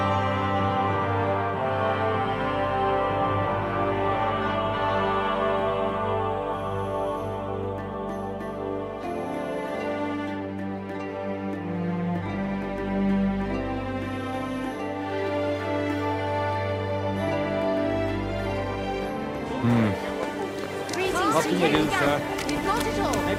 What can you do, sir?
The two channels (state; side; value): identical; both; correlation 1.00